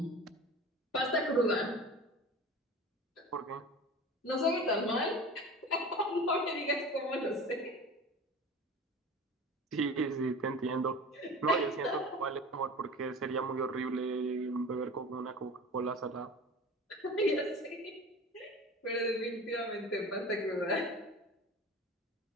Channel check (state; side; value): normal; both; correlation 0.36